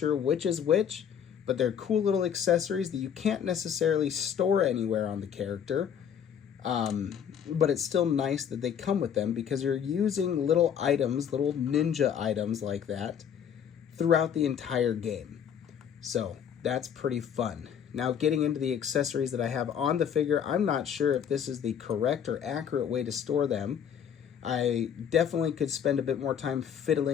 which is which, but they're cool little accessories that you can't necessarily store anywhere on the character. But it's still nice that they come with them, because you're using little items, little ninja items like that throughout the entire game. So that's pretty fun. Now, getting into the accessories that I have on the figure, I'm not sure if this is the correct or accurate way to store them. I definitely could spend a bit more time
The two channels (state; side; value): quieter; right; 8.3 dB